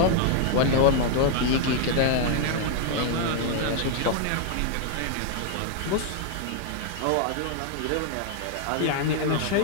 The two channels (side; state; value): both; different; correlation 0.00